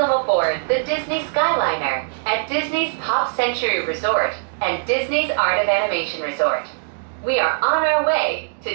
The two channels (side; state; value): left; silent; digital silence